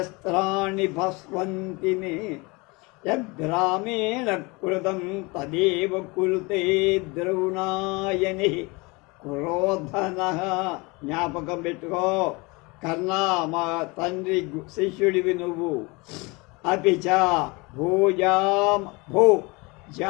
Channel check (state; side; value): quieter; right; 26.3 dB